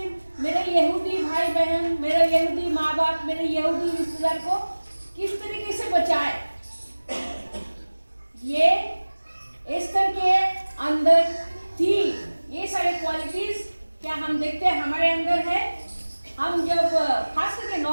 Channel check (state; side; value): inverted; both; correlation -1.00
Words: मेरे यहूदी भाई बहन, मेरे यहूदी माँ बाप, मेरे यहूदी रिश्तेदार को किस तरीके से बचाए। ये एस्तर के अंदर थी। ये सारे क्वालिटीज क्या हम देखते हैं हमारे अंदर है। हम जब खास करके